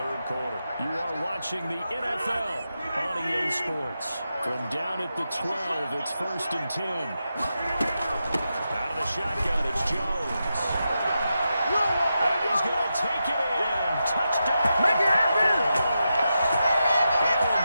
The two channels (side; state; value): both; inverted; correlation -0.88